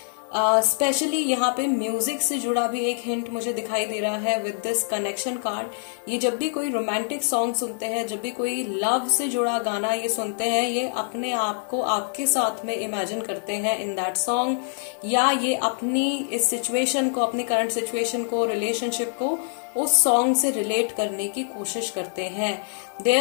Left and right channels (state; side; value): silent; right; 62 dB below the other